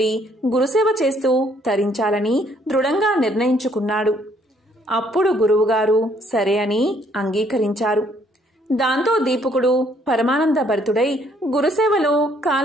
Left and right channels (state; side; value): normal; both; correlation 0.65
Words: గురుసేవ చేస్తూ తరించాలని దృఢంగా నిర్ణయించుకున్నాడు. అప్పుడు గురువుగారు సరే అని అంగీకరించారు. దాంతో దీపకుడు పరమానంద భరితుడై గురుసేవలో